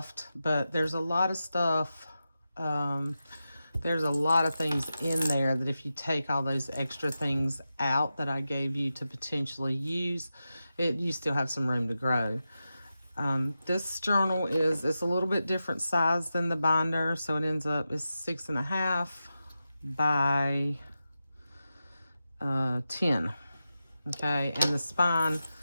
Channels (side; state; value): both; inverted; correlation -0.91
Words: but there's a lot of stuff. There's a lot of things in there that if you take all those extra things out that I gave you to potentially use, you still have some room to grow. This journal it's a little bit different size than the binder. So it ends up is 6.5 by 10. Okay. And the spine